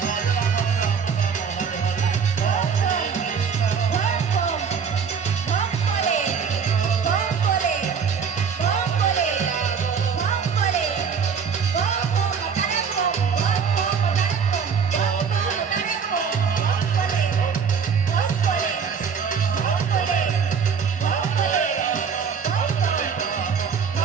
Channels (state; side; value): quieter; left; 6.4 dB